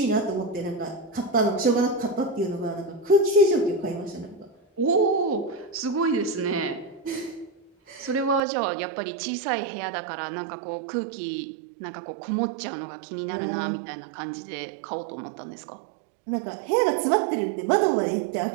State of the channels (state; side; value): drops out; left; at 8.4 s